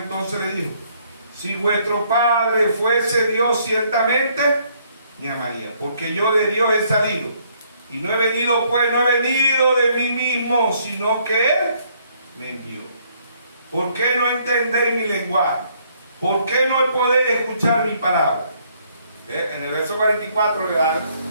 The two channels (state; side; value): inverted; both; correlation -0.67